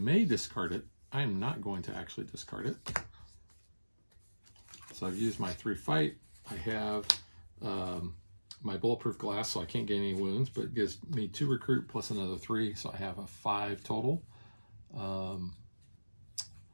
discard it. I am not going to actually discard it. So I've used my 3 fight, I have my bulletproof glass, so I can't gain any wounds, but it gives me 2 recruit plus another 3, so I have a 5 total.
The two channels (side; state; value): both; inverted; correlation -1.00